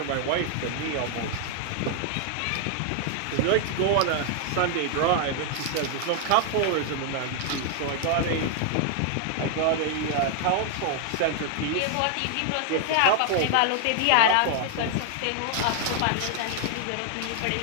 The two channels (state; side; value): different; both; correlation 0.00